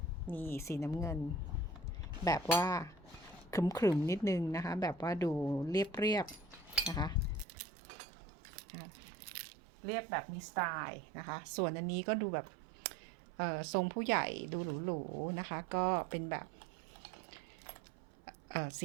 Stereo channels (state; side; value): drops out; left; at 7.5 s